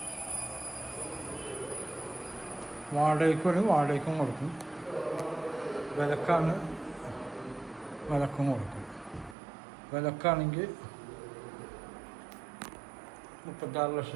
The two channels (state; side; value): drops out; left; at 9.3 s